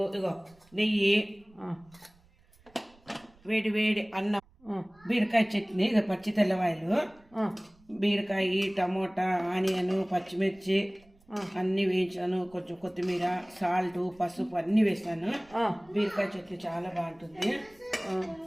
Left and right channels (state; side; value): noise; right; rumble, 30 dB below the sound